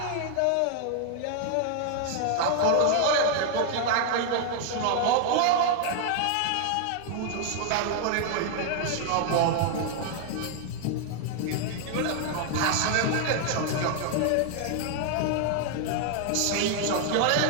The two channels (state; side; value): different; both; correlation 0.00